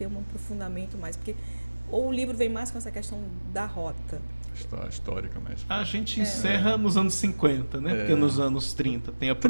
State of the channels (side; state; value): both; inverted; correlation -1.00